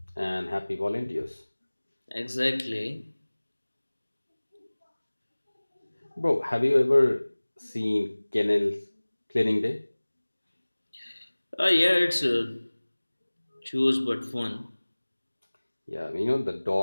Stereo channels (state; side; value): inverted; both; correlation -1.00